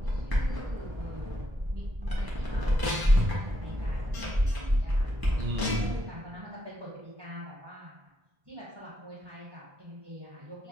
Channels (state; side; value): late; left; 1.0 ms